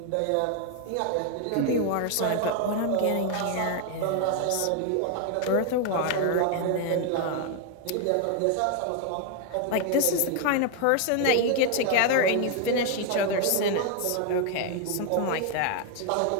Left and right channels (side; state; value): both; different; correlation 0.00